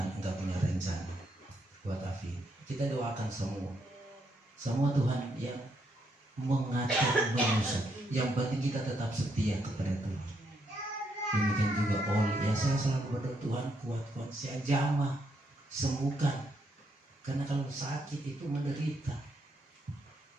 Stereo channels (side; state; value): both; normal; correlation 0.76